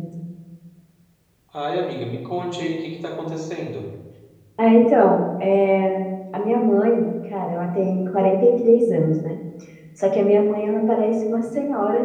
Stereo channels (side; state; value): both; identical; correlation 1.00